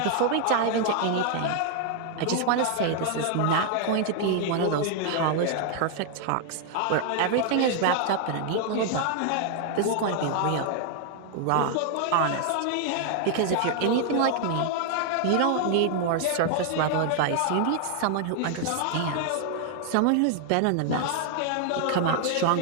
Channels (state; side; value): different; both; correlation 0.00